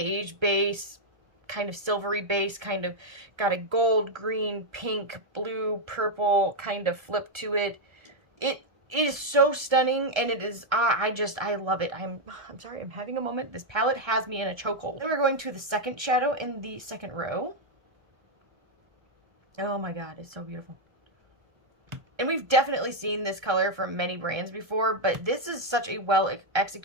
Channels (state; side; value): late; left; 1.3 ms